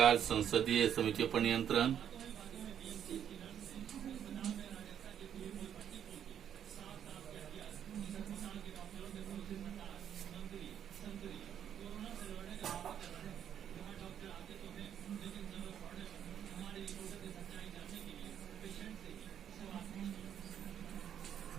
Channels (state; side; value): quieter; left; 9.3 dB